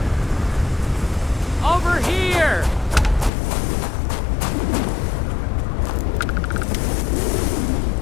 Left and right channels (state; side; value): drops out; right; at 3.3 s